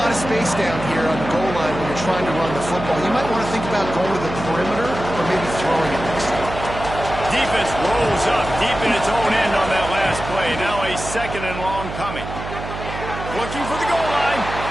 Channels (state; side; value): noise; right; hum, 9 dB below the sound